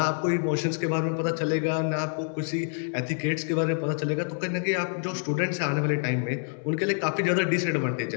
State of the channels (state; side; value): silent; right; 60 dB below the other